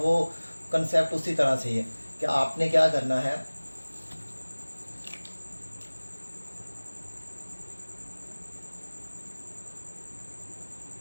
कंसेप्ट उसी तरह से ही है कि आपने क्या करना है,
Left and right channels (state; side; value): inverted; both; correlation -1.00